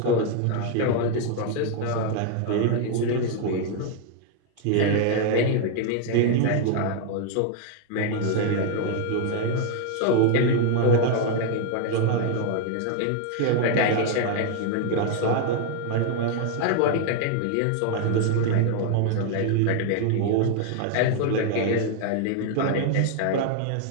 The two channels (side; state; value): both; different; correlation 0.00